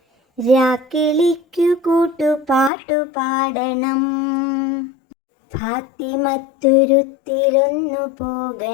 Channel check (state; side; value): drops out; right; at 2.7 s